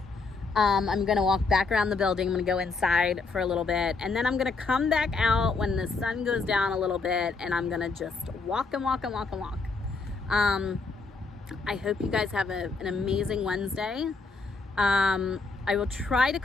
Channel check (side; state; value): right; quieter; 4.1 dB